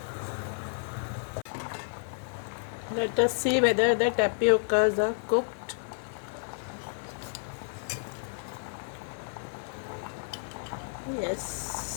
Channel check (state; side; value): silent; right; 57 dB below the other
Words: Let us see whether the tapiocas are cooked.